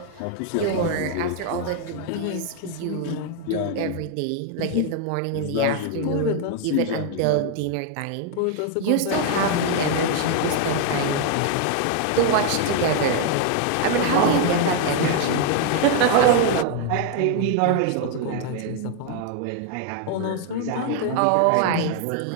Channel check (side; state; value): both; different; correlation 0.00